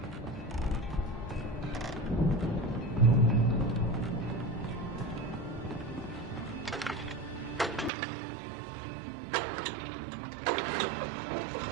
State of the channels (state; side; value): drops out; left; at 7.9 s